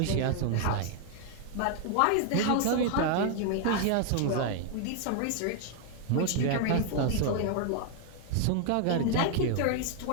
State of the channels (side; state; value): both; different; correlation 0.00